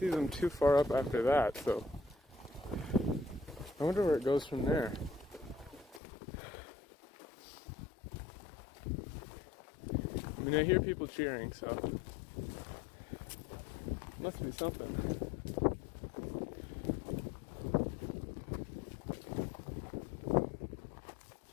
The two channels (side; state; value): right; drops out; at 6.0 s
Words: them too far up after that, so I wonder where it goes from there. I mean, I hear people cheering, so must be something.